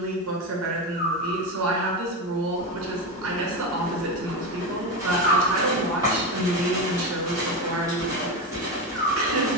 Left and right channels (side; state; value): both; normal; correlation 0.16